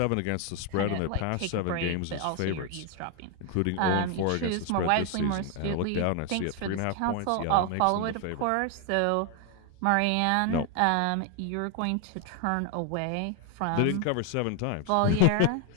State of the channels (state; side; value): different; both; correlation 0.01